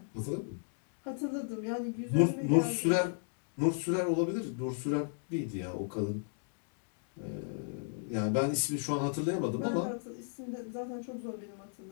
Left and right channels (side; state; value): right; silent; digital silence